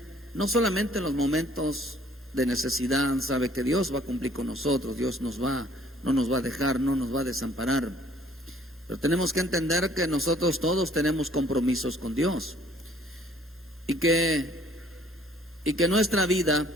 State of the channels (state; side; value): normal; both; correlation 0.58